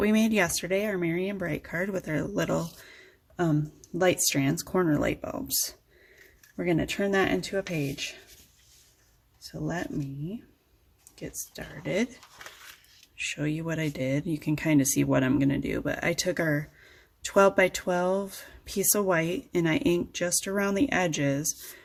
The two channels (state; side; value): identical; both; correlation 1.00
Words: made yesterday, our Merry and Bright card with our little light strands, corner light bulbs. We're going to turn that into a page. So let me get started, show you what I did. You can kind of see what I'm going to do, but I took our 12 by 12 piece of white and I inked just around the edges